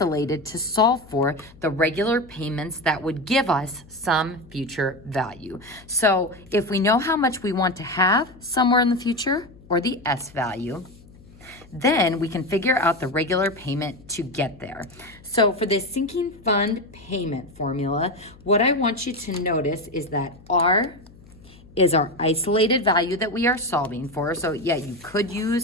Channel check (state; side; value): noise; left; hum, 23 dB below the sound